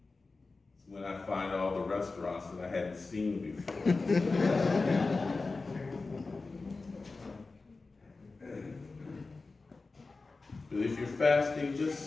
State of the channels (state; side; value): quieter; right; 3.8 dB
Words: It's when I find all the restaurants that I hadn't seen before. But if you're fasting,